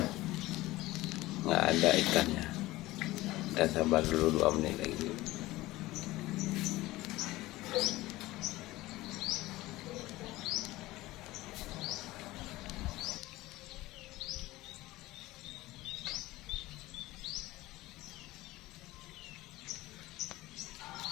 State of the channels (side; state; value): right; quieter; 18.3 dB